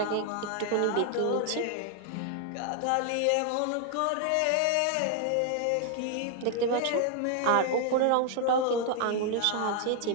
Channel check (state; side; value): different; both; correlation 0.00